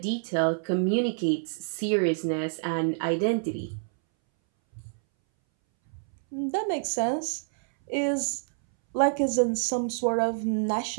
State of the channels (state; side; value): silent; left; 60 dB below the other